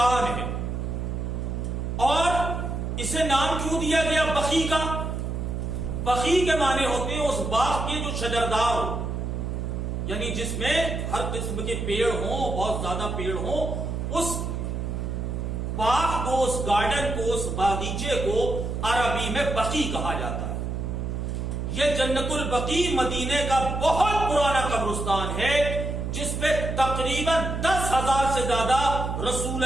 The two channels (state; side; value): noise; right; hum, 3 dB below the sound